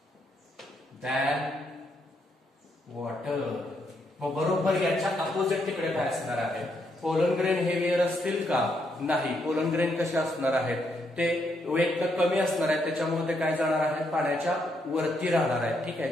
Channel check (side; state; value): both; normal; correlation 0.76